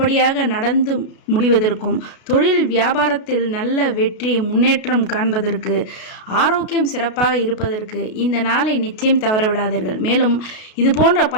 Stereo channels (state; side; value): late; right; 33 ms